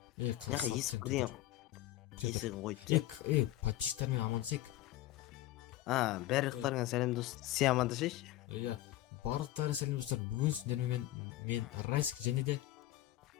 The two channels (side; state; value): right; quieter; 15.1 dB